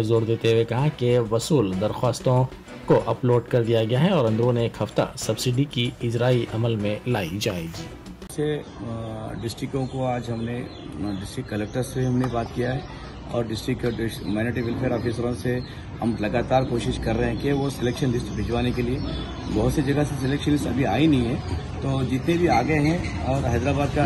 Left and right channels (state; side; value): identical; both; correlation 1.00